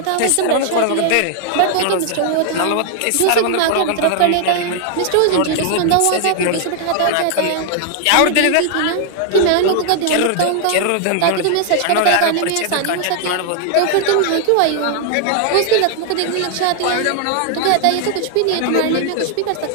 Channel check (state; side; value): different; both; correlation 0.00